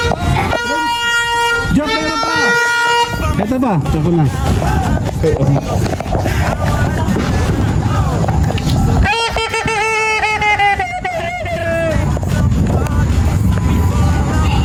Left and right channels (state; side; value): identical; both; correlation 1.00